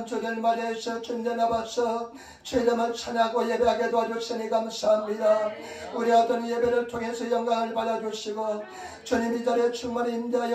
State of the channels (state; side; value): identical; both; correlation 1.00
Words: 주를 맞이해서 주님 앞에서 주님을 찬양하고 예배하게 도와주시니 감사합니다. 우리 어떤 예배를 통해서 영광을 받아주시고 주님 이 자리에 충만히